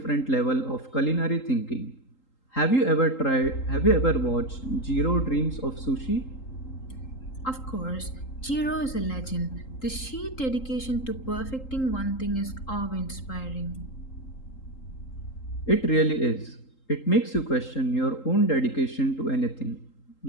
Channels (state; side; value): late; right; 3.8 ms